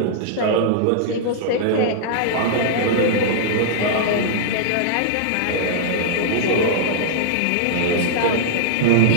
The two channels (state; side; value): different; both; correlation -0.01